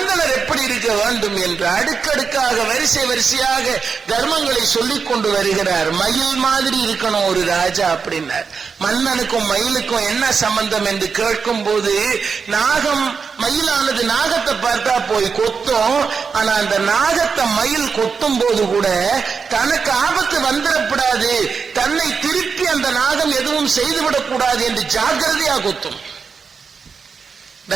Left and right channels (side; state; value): left; quieter; 5.6 dB